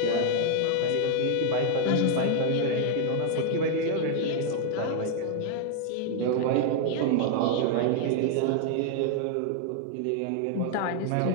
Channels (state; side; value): different; both; correlation 0.00